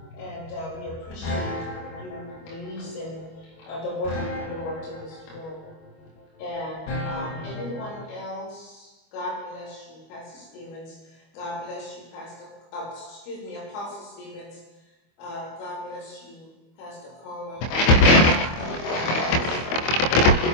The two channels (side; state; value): right; late; 25 ms